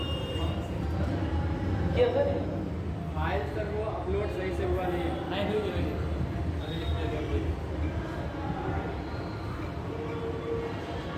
फाइल सर वो अपलोड सही से हुआ नहीं है। नहीं हुई अभी लिखने दो।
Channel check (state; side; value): identical; both; correlation 1.00